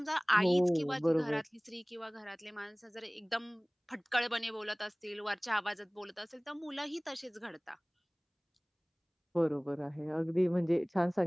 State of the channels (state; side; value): identical; both; correlation 1.00